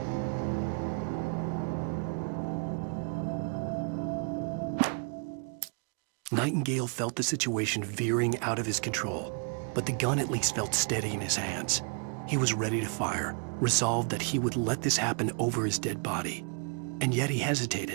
Nightingale felt the situation veering out of his control, but the gun at least felt steady in his hands. He was ready to fire, resolved that he would let this happen over his dead body. And yet he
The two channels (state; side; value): quieter; left; 39.9 dB